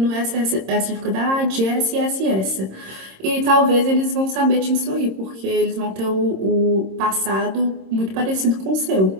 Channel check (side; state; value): left; late; 26 ms